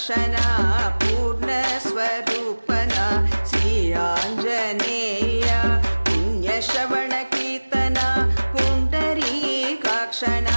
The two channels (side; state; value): both; inverted; correlation -1.00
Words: పూర్ణ స్వరూపన శ్రీ ఆంజనేయ పుణ్యశ్రవణ కీర్తన పుండరీకాక్షణ